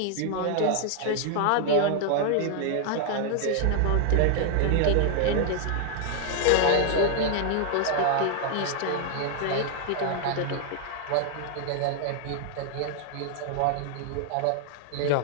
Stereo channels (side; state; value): both; different; correlation 0.00